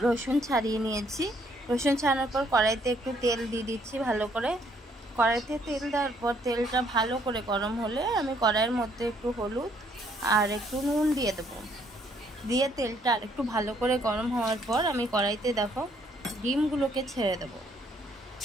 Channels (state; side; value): normal; both; correlation 0.67